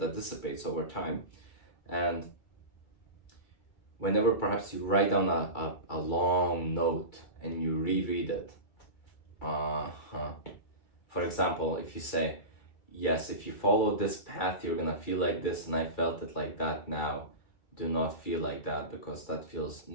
dissipates over time. And whenever perhaps you write down a long note and you reread it, for example, if you say, yes, if you follow this path, you're gonna feel like this, and I felt it like that now. Do not feel like that because that feels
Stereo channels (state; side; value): late; right; 2.3 ms